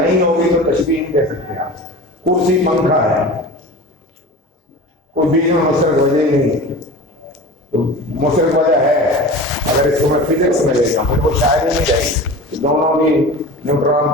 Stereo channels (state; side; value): normal; both; correlation 0.35